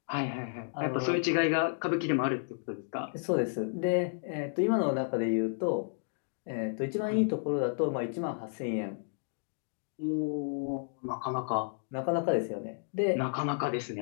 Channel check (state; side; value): silent; right; digital silence